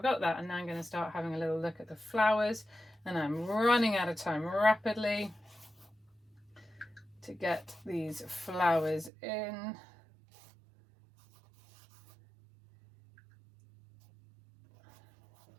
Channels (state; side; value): drops out; left; at 9.1 s